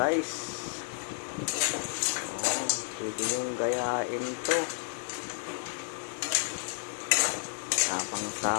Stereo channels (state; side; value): silent; right; 57 dB below the other